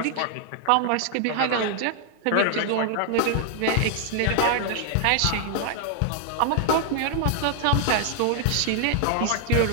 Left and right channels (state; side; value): different; both; correlation 0.00